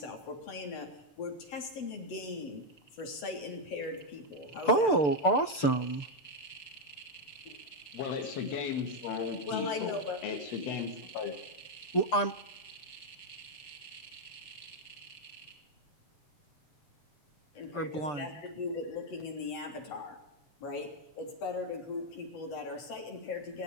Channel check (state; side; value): late; right; 6.8 ms